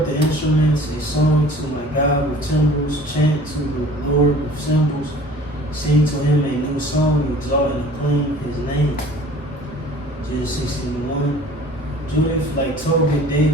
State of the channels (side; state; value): both; normal; correlation 0.48